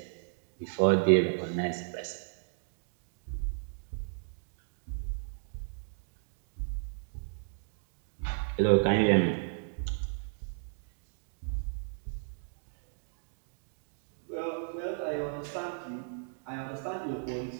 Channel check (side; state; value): left; silent; digital silence